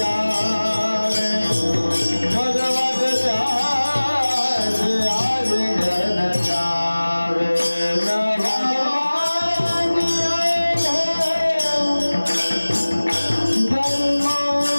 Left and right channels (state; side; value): inverted; both; correlation -1.00